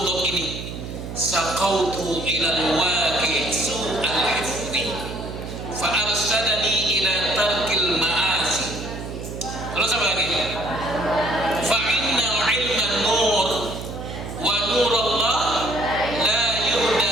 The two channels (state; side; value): noise; right; hum, 8 dB below the sound